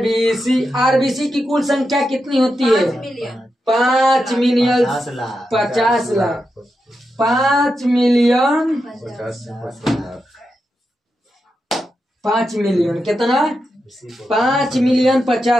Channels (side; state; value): both; normal; correlation 0.87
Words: आरबीसी की कुल संख्या कितनी होती है 5 मिलियन 50 लाख 5 मिलियन 5 मिलियन कितना 5 मिलियन